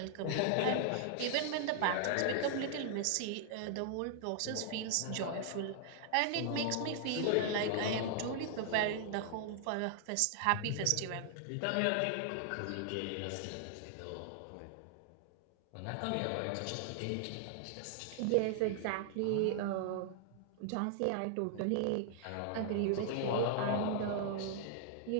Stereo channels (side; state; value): both; different; correlation -0.01